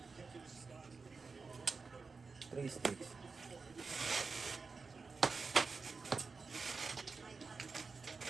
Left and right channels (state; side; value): quieter; left; 4.5 dB